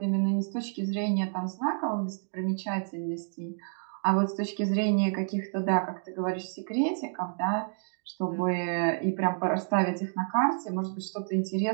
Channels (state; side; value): silent; left; digital silence